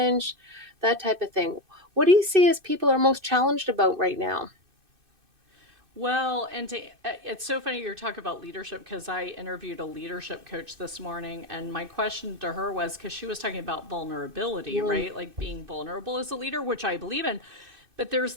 that type of thing. What do you see as people are most challenged about right now? Well, it's so funny you're talking about leadership because I interviewed a leadership coach this morning, and my question to her was because she was talking about vulnerability, Mm. right? Like being vulnerable as a leader, which I believe in. But there's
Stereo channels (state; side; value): late; left; 2.6 ms